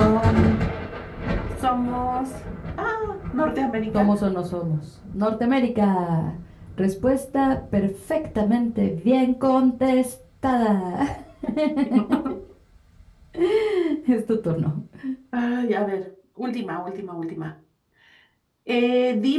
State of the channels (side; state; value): both; identical; correlation 1.00